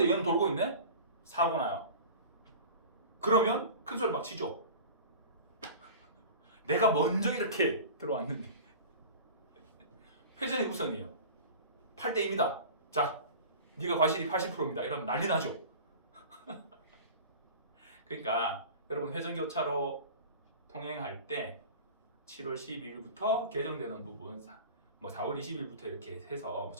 얘는 돌고 있네? 사고 나요. 그러면 큰 소리 막 치죠. 내가 먼저 이렇게 들어왔는데 회전이 우선이에요. 8대2입니다. 자, 네가 과실이 80%입니다. 이러면 난리 나죠. 그러니까 여러분 회전교차로 통행할 때 7월 12일부터 개정되는 부분, 뭐 4월 20일부터 이렇게 해서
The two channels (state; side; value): inverted; both; correlation -0.38